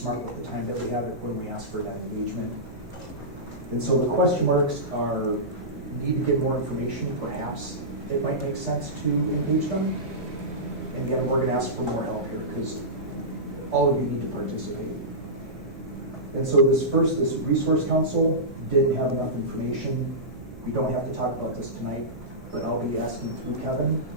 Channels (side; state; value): right; noise; hum, 19 dB below the sound